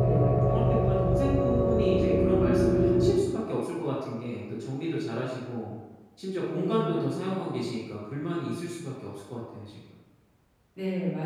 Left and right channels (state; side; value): identical; both; correlation 1.00